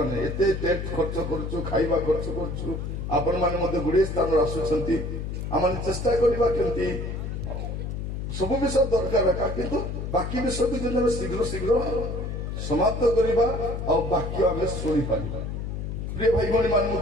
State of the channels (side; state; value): left; noise; hum, 4 dB below the sound